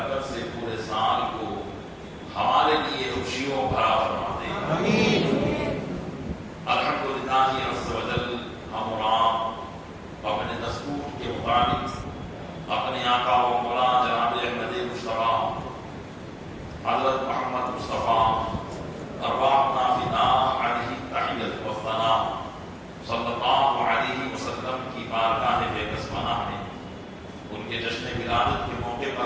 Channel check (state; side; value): identical; both; correlation 1.00